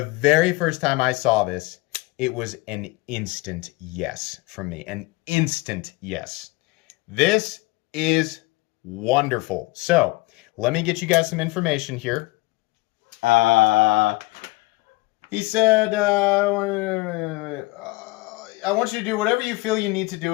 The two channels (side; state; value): right; quieter; 22.6 dB